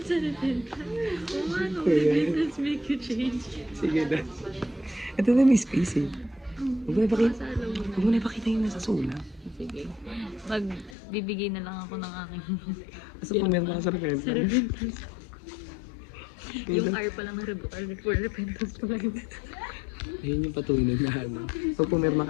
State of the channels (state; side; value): drops out; right; at 11.0 s